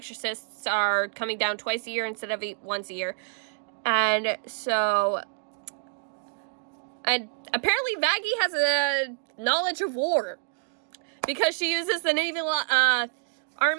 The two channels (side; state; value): left; silent; digital silence